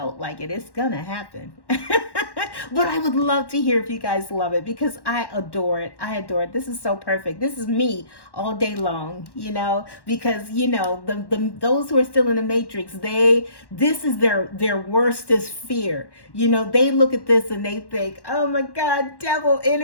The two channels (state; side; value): late; right; 1.1 ms